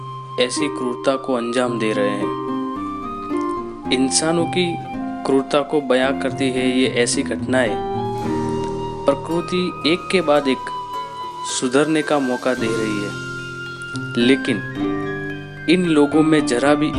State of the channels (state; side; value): identical; both; correlation 1.00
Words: ऐसी क्रूरता को अंजाम दे रहे हैं। इंसानों की क्रूरता को बयां करती है ये ऐसी घटनाएं। प्रकृति एक के बाद एक सुधरने का मौका दे रही है, लेकिन इन लोगों में जरा भी